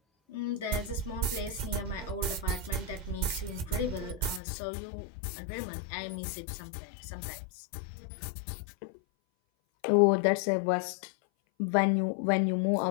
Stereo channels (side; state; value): right; drops out; at 4.4 s